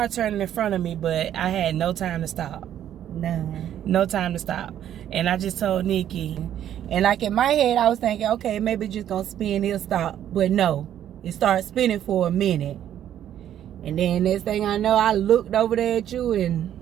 turning in front of me, but I had no time to stop. No time to stop. And I just told Nikki. And like in my head, I was thinking, okay, maybe it's just going to spin, it'll stop. But no, it started spinning for a minute. And then next thing I know, I looked over there at you, and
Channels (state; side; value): quieter; left; 10.8 dB